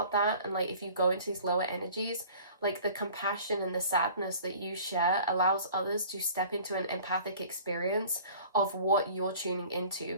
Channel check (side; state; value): both; inverted; correlation -0.47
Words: that. And like, if you go into these lower energies, like the compassion and the sadness that you share allows others to step into an empathic experience of what you're tuning into,